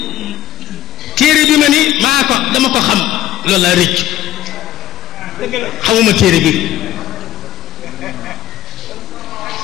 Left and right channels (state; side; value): quieter; right; 13.4 dB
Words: téere bi ma ni dama ko xam loolu laa rëccu xamuma téere bi